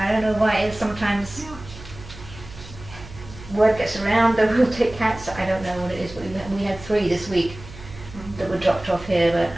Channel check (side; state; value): right; noise; hum, 16 dB below the sound